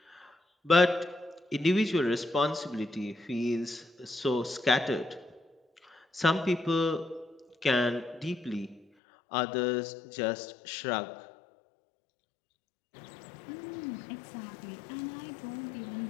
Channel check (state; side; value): drops out; right; at 8.8 s